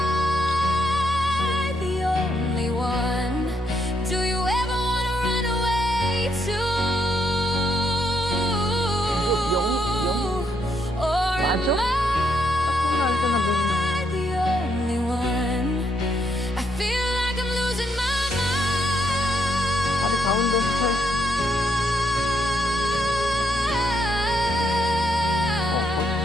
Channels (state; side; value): normal; both; correlation 0.76